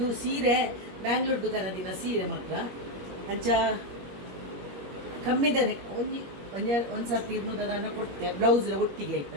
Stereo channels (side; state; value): left; late; 21 ms